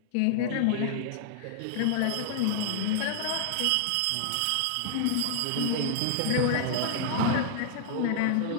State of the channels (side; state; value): both; different; correlation -0.01